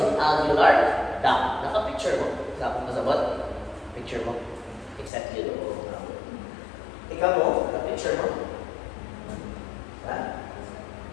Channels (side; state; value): right; drops out; at 5.1 s